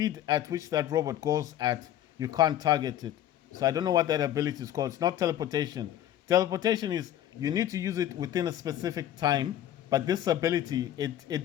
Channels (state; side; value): quieter; right; 11.8 dB